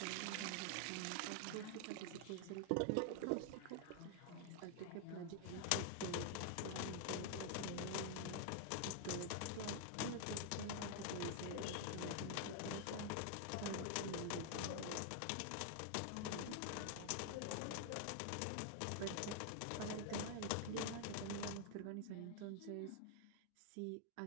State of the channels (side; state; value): both; different; correlation 0.00